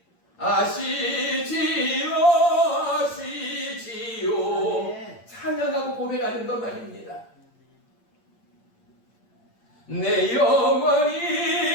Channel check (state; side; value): late; right; 8.7 ms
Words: 아시지요 아시지요 찬양하고 고백하는 것 말입니다. 내 영혼이